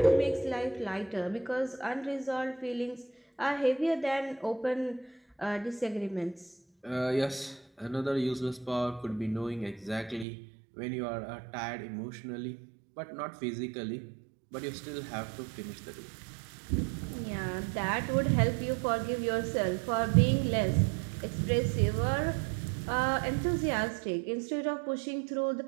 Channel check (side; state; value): left; drops out; at 10.2 s